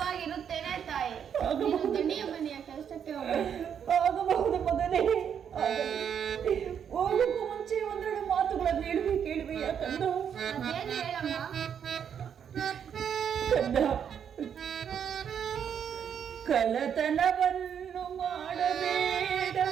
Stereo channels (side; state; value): left; quieter; 8.2 dB